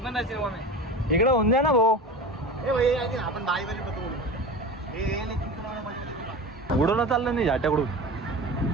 पण जायचं मग इकडं होऊन जा ना भाऊ आपण बाई उडवणं चाललं नाही झाट्याकडून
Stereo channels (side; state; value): both; normal; correlation 0.32